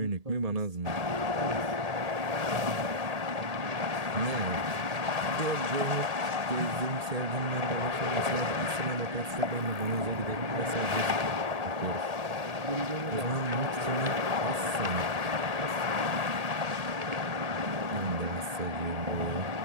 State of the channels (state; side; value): late; left; 1.8 ms